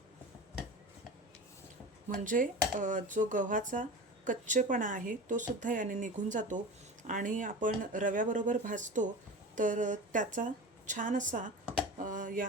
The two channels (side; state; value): both; normal; correlation 0.31